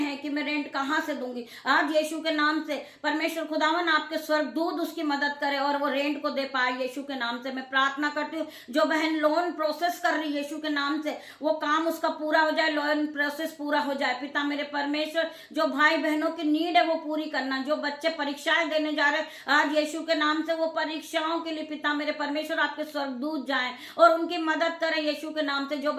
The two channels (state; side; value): identical; both; correlation 1.00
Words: कि मैं रेंट कहाँ से दूंगी, आज यीशु के नाम से परमेश्वर खुदावन आपके स्वर्गदूत उसकी मदद करे और वो रेंट को दे पाए यीशु के नाम से। मैं प्रार्थना करती हूँ, जो बहन लोन प्रोसेस कर रही है यीशु के नाम से, वो काम उसका पूरा हो जाए, लोन प्रोसेस पूरा हो जाए। पिता मेरे परमेश्वर, जो भाई बहनों की नीड है वो पूरी करना, जो बच्चे परीक्षाएं देने जा रहे हैं आज यीशु के नाम से, वो परीक्षाओं के लिए पिता मेरे परमेश्वर आपके स्वर्गदूत जाएं और उनकी मदद करें यीशु के नाम से। जो